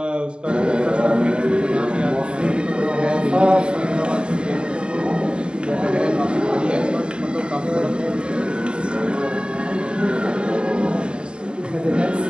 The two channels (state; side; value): late; left; 0.051 ms